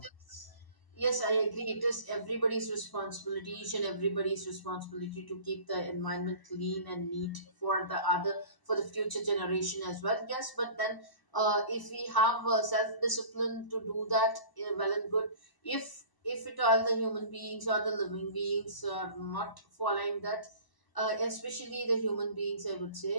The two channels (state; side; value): late; right; 1.0 ms